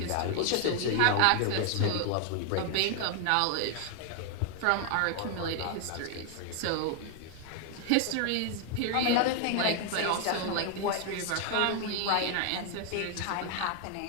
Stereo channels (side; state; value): both; different; correlation 0.00